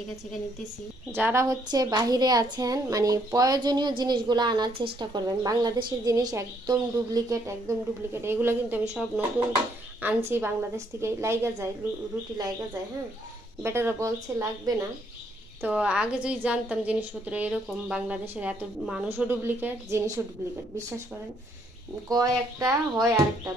ছেঁকে নিতেছি। যারা বাহিরে আছেন, মানে প্রয়োজনীয় জিনিসগুলো আনার চেষ্টা করবেন। বাংলাদেশের জিনিস একদম ডুপ্লিকেট, একদম ডুপ্লিকেট। এগুলো কিন্তু আমি সব নতুন আনছি বাংলাদেশ থেকে, লাইগা যায়, রুটি লাইগা যায়। হ্যাঁ, বেটারা বলছে লাগবে না। তো আগে যদি জানতাম জিনিসপত্র এরকম, বাংলাদেশের এত মানুষও ডুপ্লিকেট, জিনিসও ডুপ্লিকেট, বিশ্বাস করেন। কয় একটা হয় আরেকটা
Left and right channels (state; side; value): normal; both; correlation 0.70